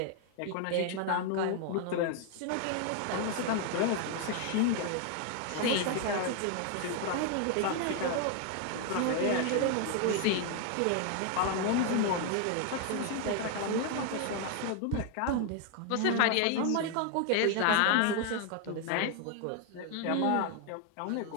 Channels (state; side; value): different; both; correlation 0.00